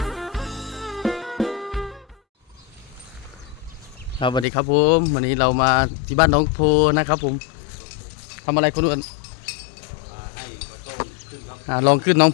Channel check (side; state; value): right; drops out; at 4.5 s